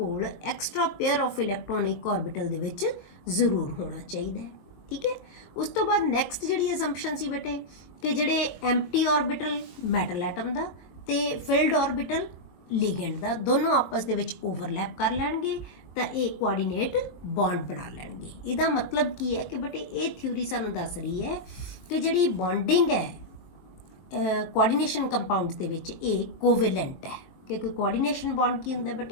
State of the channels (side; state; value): right; late; 22 ms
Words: extra pair of electronic orbital ਦੇ ਵਿੱਚ ਜ਼ਰੂਰ ਹੋਣਾ ਚਾਹੀਦਾ ਹੈ, ਠੀਕ ਹੈ। ਉਸ ਤੋਂ ਬਾਅਦ ਨੈਕਸਟ ਜਿਹੜੀ ਅਸੰਪਸ਼ਨ ਸੀ ਬੇਟੇ ਕਿ ਜਿਹੜੇ ਐਮਟੀ ਆਰਬਿਟਲ ਮੈਟਲ ਐਟਮ ਦਾ ਤੇ ਫਿਲਡ ਆਰਬਿਟਲ ਲੀਗੈਂਡ ਦਾ ਦੋਨੋਂ ਆਪਸ ਦੇ ਵਿੱਚ ਓਵਰਲੈਪ ਕਰ ਲੈਣਗੇ ਤਾਂ ਇਹ ਕੋਆਰਡੀਨੇਟ ਬੌਂਡ ਬਣਾ ਲੈਣਗੇ। ਇਹਦਾ ਮਤਲਬ ਕੀ ਹੈ ਕਿ ਬੇਟੇ ਇਹ ਥਿਊਰੀ ਸਾਨੂੰ ਦੱਸ ਰਹੀ ਹੈ ਕਿ ਜਿਹੜੀ ਬੌਂਡਿੰਗ ਹੈ कोआर्ਡੀਨੇਸ਼ਨ ਕੰਪਾਊਂਡਸ ਦੇ ਵਿੱਚ ਇਹ ਕੋਵੈਲੈਂਟ ਹੈ, ਕਿਉਂਕਿ ਕੋਆਰਡੀਨੇਸ਼ਨ ਬੌਂਡ ਕੀ ਹੁੰਦਾ